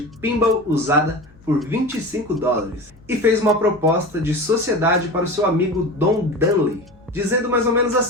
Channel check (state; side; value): noise; left; hum, 27 dB below the sound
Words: pinball usada por $25 e fez uma proposta de sociedade para o seu amigo Don Dunley, dizendo mais ou menos